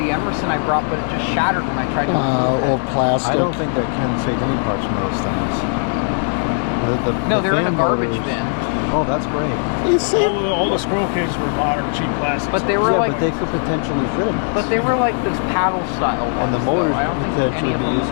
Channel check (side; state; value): right; silent; 60 dB below the other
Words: Emerson I brought, but it just shattered when I tried to. Old plastic. I don't think that Ken saved any parts from those things. No, they're in a fan garbage motors- bin. Oh, that's great. You saved. All the squirrel cages were modern, cheap plastic. But they were Yeah, like, but they could potentially fit in this. but they were like those paddle style ones. and the though. motors I don't could think potentially any of be them. used